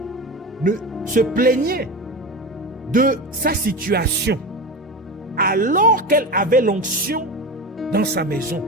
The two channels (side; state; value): both; normal; correlation 0.25